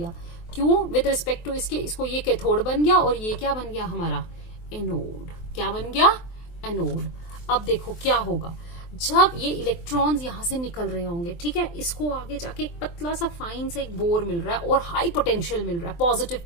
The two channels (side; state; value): right; late; 23 ms